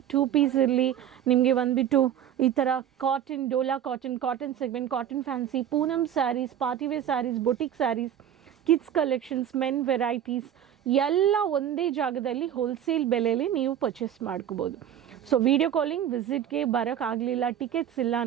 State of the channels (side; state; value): left; quieter; 10.1 dB